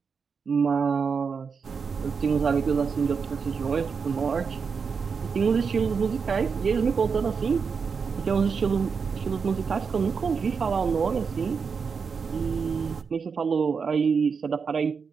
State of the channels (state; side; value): quieter; left; 5.7 dB